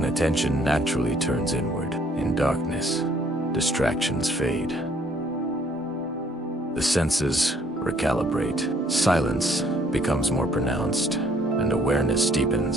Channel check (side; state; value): both; normal; correlation 0.62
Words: attention naturally turns inward. In darkness, distractions fade. The senses recalibrate. Silence becomes more pronounced, and awareness